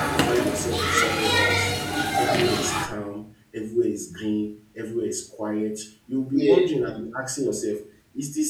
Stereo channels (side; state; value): both; identical; correlation 1.00